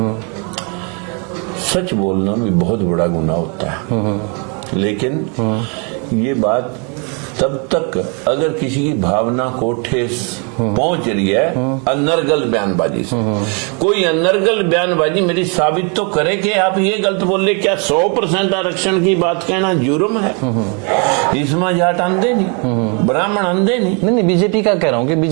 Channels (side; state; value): left; quieter; 35.6 dB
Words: सच बोलना भी बहुत बड़ा गुनाह होता है। लेकिन ये बात तब तक अगर किसी की भावना को ठेस पहुंच रही है अनर्गल बयानबाजी से, कोई अनर्गल बयानबाजी मेरी साबित तो करे कि आप ये गलत बोल रहे, क्या 100% आरक्षण की बात कहना जुर्म है? इसमें जाट अंधे नहीं, ब्राह्मण अंधे नहीं। नहीं बीजेपी का कह रहा हूँ कि